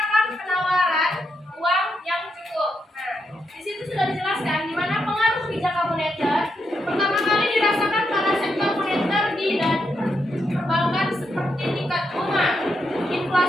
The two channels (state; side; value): normal; both; correlation 0.82